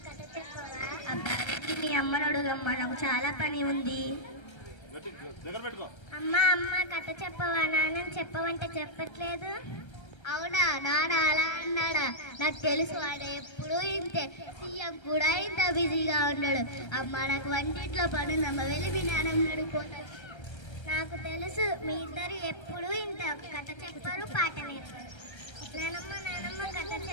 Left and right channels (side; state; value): right; late; 1.3 ms